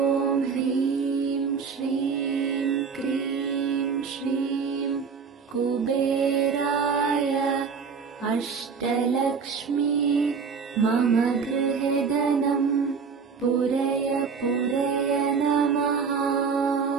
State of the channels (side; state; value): left; quieter; 5.7 dB